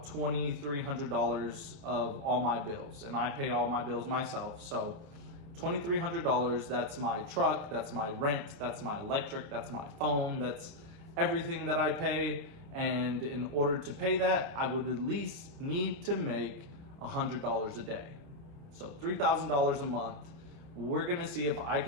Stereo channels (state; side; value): late; left; 29 ms